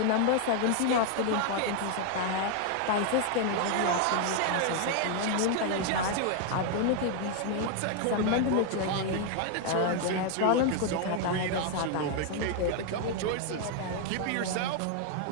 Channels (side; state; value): both; different; correlation 0.00